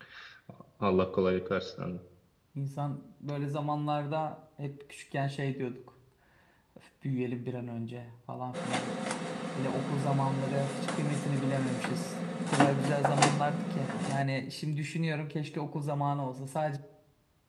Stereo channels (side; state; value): both; identical; correlation 1.00